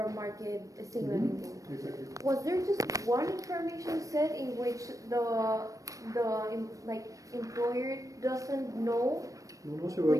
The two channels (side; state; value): left; late; 0.16 ms